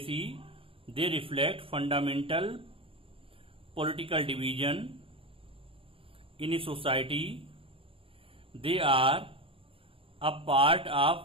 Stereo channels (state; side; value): late; left; 0.27 ms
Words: They reflect fundamental political division in a society. They are a part